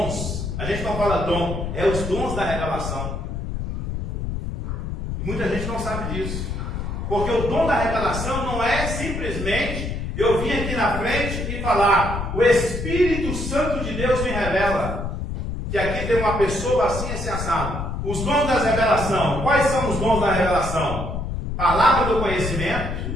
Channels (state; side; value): noise; left; rumble, 4 dB below the sound